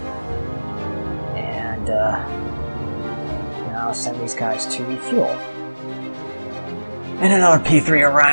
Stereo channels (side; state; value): both; inverted; correlation -1.00